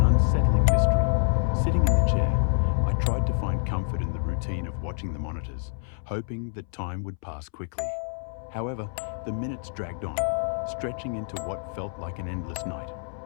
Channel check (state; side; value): silent; right; 60 dB below the other